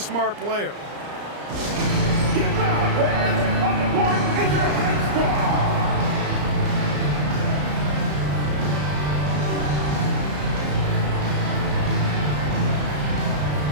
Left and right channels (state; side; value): late; left; 34 ms